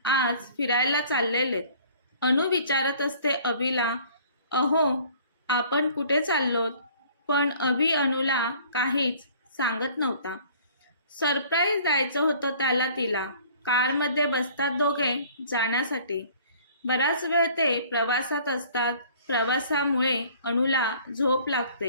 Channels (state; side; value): inverted; both; correlation -0.53